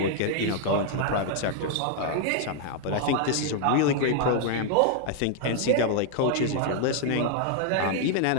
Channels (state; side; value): different; both; correlation 0.00